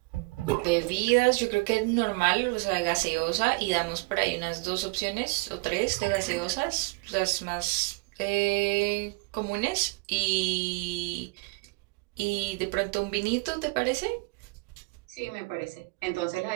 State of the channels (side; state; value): left; quieter; 26.8 dB